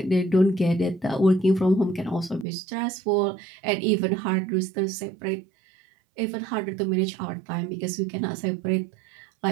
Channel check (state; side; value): drops out; left; at 2.5 s